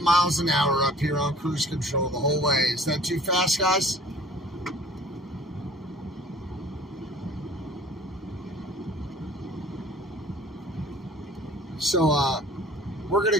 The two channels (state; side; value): normal; both; correlation 0.50